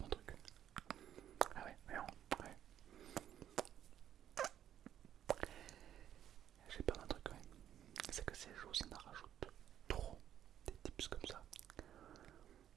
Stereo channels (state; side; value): quieter; left; 10.6 dB